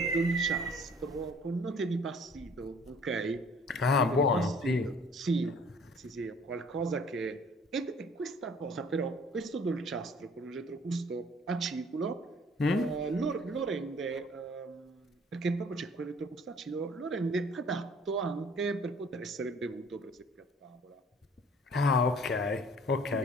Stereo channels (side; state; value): both; normal; correlation 0.54